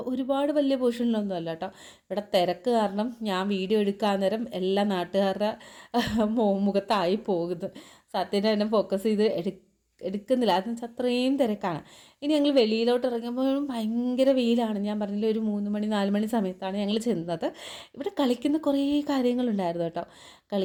ഒരുപാട് വലിയ പോർഷനിലൊന്നും അല്ല കേട്ടോ. ഇവിടെ തിരക്ക് കാരണം ഞാൻ വീഡിയോ എടുക്കാൻ നേരം എല്ലാ നാട്ടുകാരുടെ മുഖത്തായി പോകുന്നു. സത്യനെ തന്നെ ഫോക്കസ് ചെയ്ത് എടുക്കുന്നില്ല, അതെന്ന് വെച്ചാൽ അത്രയും തിരക്കാണ്. ഇനി ഞങ്ങൾ വെളിയിലോട്ട് ഇറങ്ങുമ്പോഴും ഭയങ്കര വെയിലാണ്. ഞാൻ പറഞ്ഞില്ല, ഒരു 3 മണി 4 മണി സമയത്താണ് ഞങ്ങൾ ചെന്നത്. ഇവിടെ കളിക്കുന്ന കുറേ കാര്യങ്ങളുണ്ടായിരുന്നു കേട്ടോ.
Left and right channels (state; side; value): identical; both; correlation 1.00